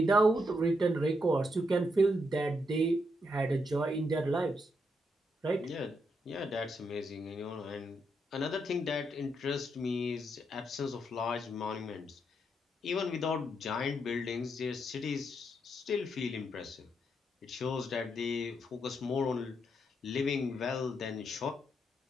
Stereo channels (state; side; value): normal; both; correlation 0.79